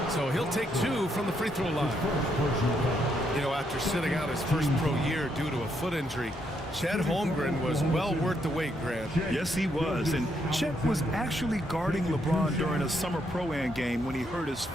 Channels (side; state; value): both; normal; correlation 0.76